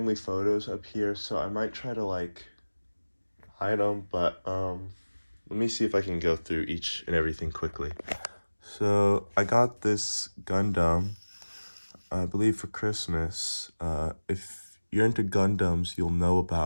photos up here, so I might try to like hide them, but let me see if I can go through each and everything quickly. So I got this Gundam, I believe for Christmas. If you're into Gundams, you'll know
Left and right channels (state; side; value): inverted; both; correlation -1.00